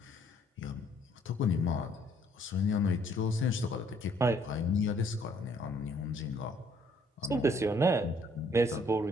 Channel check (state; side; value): normal; both; correlation 0.63